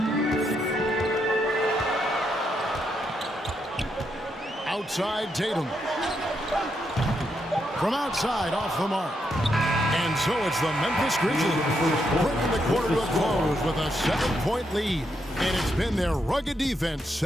Outside Tatum. From outside, off the mark. And so it's the Memphis Grizzlies bringing the quarter to a close with a 7-point lead. And it's been their rugged defense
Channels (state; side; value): normal; both; correlation 0.80